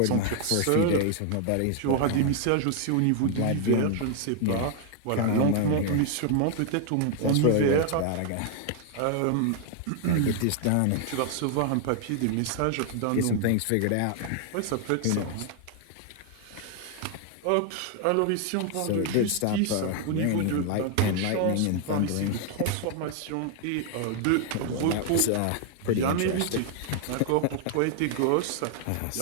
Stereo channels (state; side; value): different; both; correlation 0.00